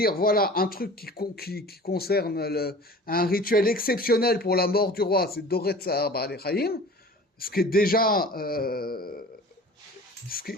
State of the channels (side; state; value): both; normal; correlation 0.42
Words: voilà un truc qui concerne un rituel exceptionnel pour la mort du roi, c'est Doré Tsar Ba'alei Chaim, ce qui est déjà